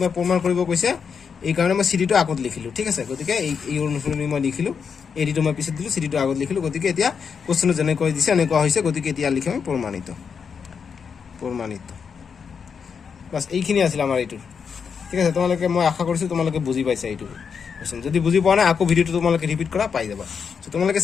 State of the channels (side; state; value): right; quieter; 6.3 dB